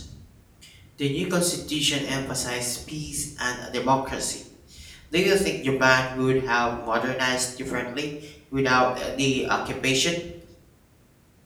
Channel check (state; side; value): identical; both; correlation 1.00